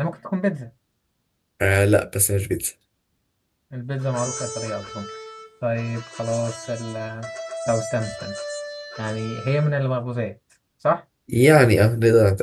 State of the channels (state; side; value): identical; both; correlation 1.00